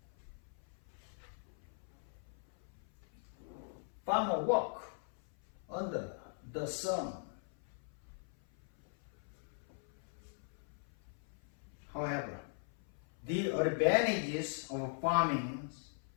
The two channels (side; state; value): right; silent; 51 dB below the other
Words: Farmer work under the sun. However, the advantages of farming